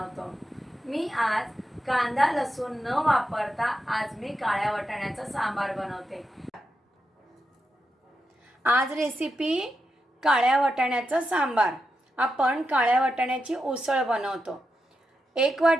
मी आज कांदा लसूण न वापरता आज मी काळ्या वाटाण्याचं सांबार बनवते. आज रेसिपी काळ्या वाटाण्याचं सांबार. आपण काळ्या वाटाण्याची उसळ बनवतो. 1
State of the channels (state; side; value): normal; both; correlation 0.87